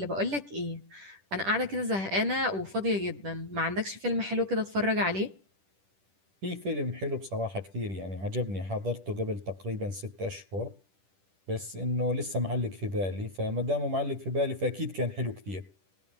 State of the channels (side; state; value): left; late; 10 ms